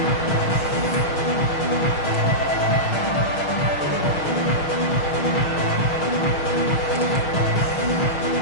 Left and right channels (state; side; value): late; right; 6.4 ms